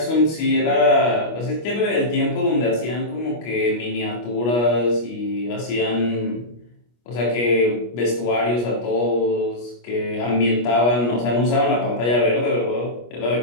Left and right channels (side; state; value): right; late; 25 ms